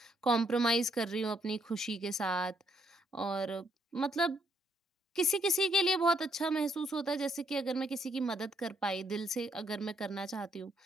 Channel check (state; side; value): normal; both; correlation 0.72